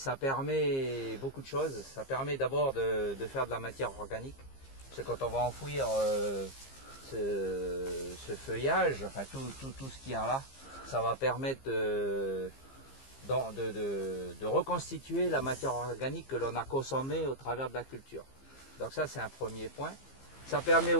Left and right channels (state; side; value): late; right; 15 ms